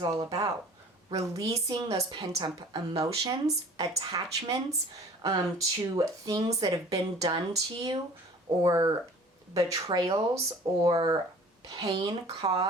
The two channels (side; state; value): both; normal; correlation 0.47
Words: all about. Releasing those pent-up emotions, attachments to things that have been done to you, or betrayals or pain